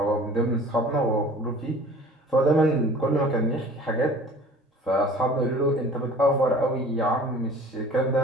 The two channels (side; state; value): both; normal; correlation 0.47